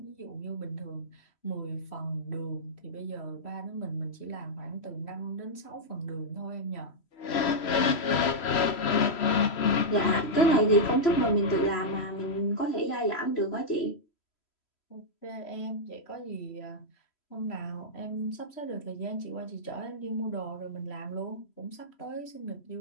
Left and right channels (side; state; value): right; late; 3.1 ms